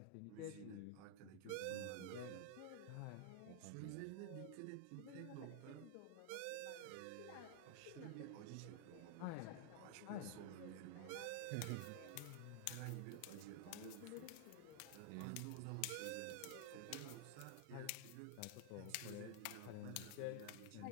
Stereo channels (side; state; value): both; different; correlation 0.00